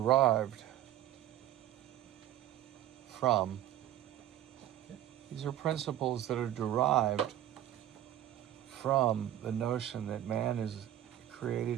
from the notion that man is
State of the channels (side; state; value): left; quieter; 12.3 dB